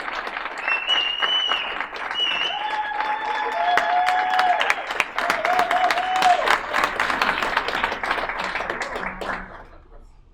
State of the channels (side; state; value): both; identical; correlation 1.00